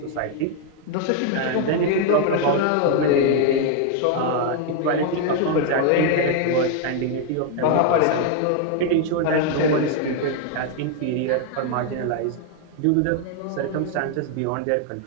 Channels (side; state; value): both; different; correlation 0.00